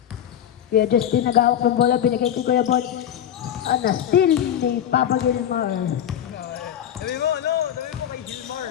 Kuya Justin nag-awak ng bola, binigay kay Kuya Bon. Still ni Papa Gilmar. Sabi mo, ano? Sabi mo kay Gilmar.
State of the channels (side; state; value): right; quieter; 10.2 dB